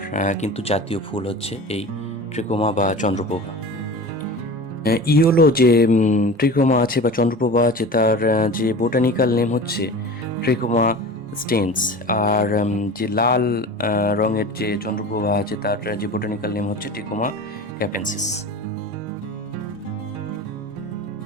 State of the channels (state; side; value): normal; both; correlation 0.35